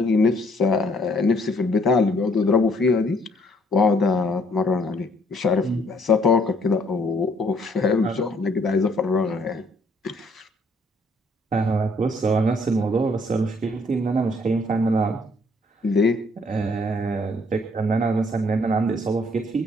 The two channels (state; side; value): normal; both; correlation 0.64